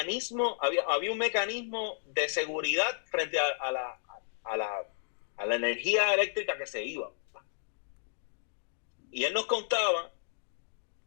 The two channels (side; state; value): right; silent; digital silence